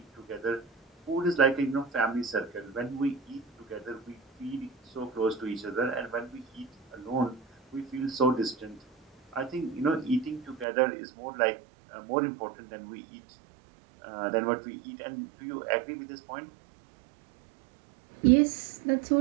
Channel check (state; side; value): drops out; left; at 10.7 s